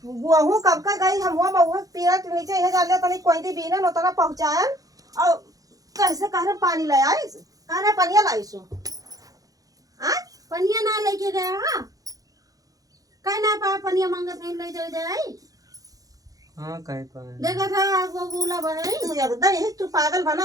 गुहू कब का गई हम हुआ बहु पेड़ के नीचे यह जान लिया तनी कोई दी बीने नोतना पहुंचायन और कैसे कहरे पानी ले आइस कहरे पनिया लाइसु आ पनिया ना लेके गया हां कह ना पा पनिया मांगत नहीं ले जाए हां कहे पाए देखा था वो बोला भाई तू एकदम यही तू पागल बना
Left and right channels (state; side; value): late; left; 0.17 ms